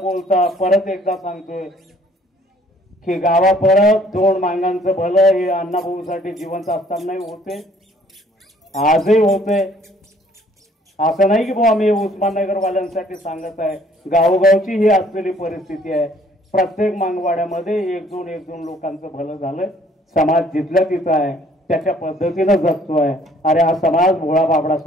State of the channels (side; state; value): both; normal; correlation 0.60